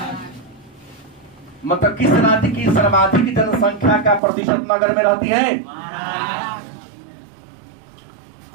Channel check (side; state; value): left; drops out; at 4.2 s